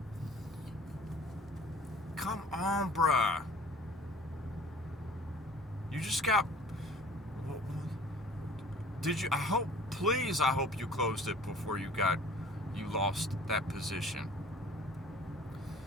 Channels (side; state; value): both; normal; correlation 0.49